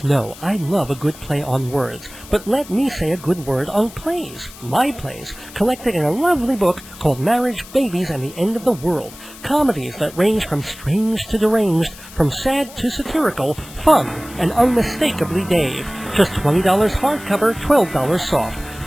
know I love a good play on words, but let me say a good word on plays, my plays, collected in a lovely book called Marriage, Babies, and the End of the World. Comedies that range from strange to deranged, from sad to satirical, fun, and unmistakably Dave. Just $20 hardcover, $12 soft.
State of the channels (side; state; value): left; noise; hiss, 18 dB below the sound